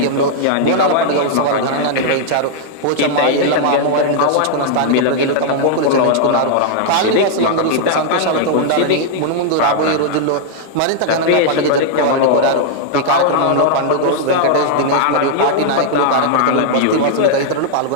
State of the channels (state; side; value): different; both; correlation -0.01